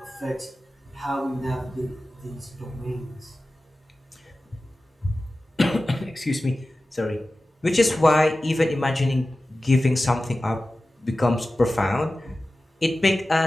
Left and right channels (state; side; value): normal; both; correlation 0.95